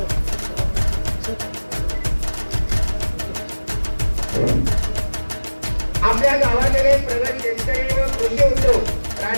आपल्या गावाकडे प्रगत शेतकरी व कृषी उद्योग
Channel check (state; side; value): inverted; both; correlation -1.00